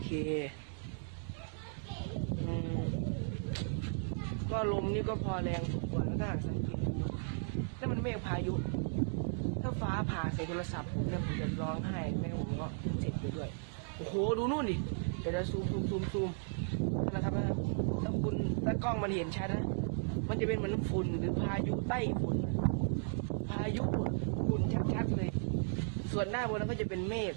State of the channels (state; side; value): silent; left; digital silence